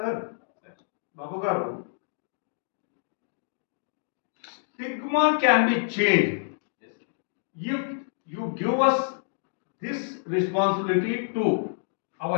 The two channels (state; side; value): silent; right; digital silence